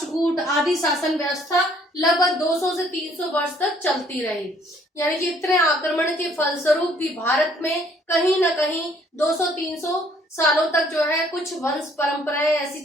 आदि शासन व्यवस्था लगभग 200 से 300 वर्ष तक चलती रही। यानी कि इतने आक्रमण के फलस्वरूप भी भारत में कहीं ना कहीं 200-300 सालों तक जो है कुछ वंश परंपराएं ऐसी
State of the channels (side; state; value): both; normal; correlation 0.62